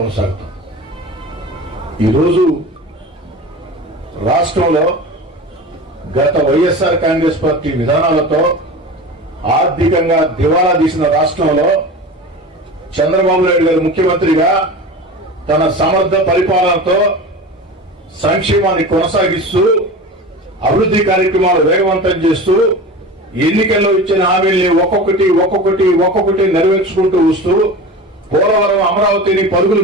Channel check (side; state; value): both; normal; correlation 0.32